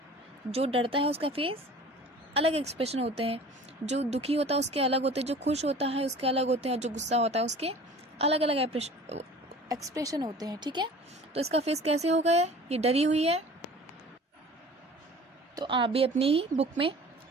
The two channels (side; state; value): both; normal; correlation 0.44